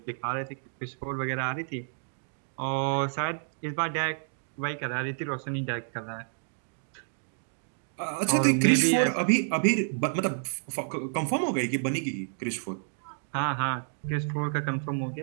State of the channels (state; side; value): silent; left; digital silence